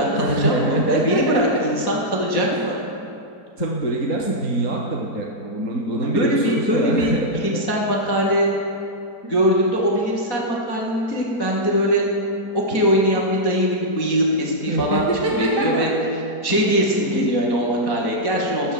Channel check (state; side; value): late; right; 4.1 ms